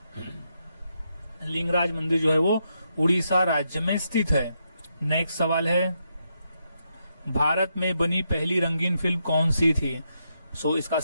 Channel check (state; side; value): inverted; both; correlation -0.81